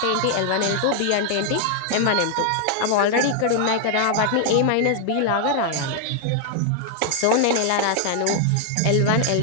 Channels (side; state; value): both; different; correlation 0.00